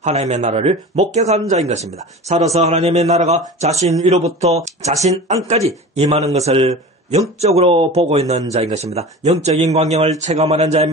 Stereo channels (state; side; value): normal; both; correlation 0.35